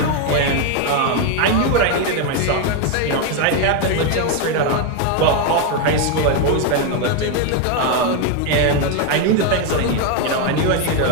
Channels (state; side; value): different; both; correlation 0.01